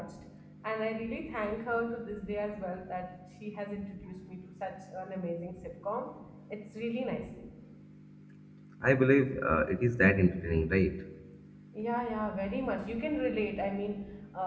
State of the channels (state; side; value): identical; both; correlation 1.00